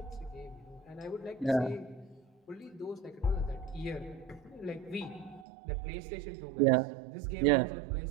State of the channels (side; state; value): left; drops out; at 5.5 s